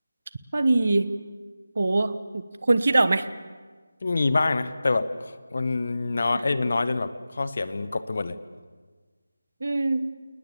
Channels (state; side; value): inverted; both; correlation -0.93